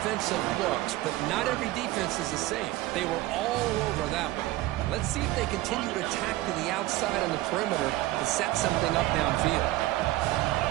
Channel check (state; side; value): quieter; left; 17.3 dB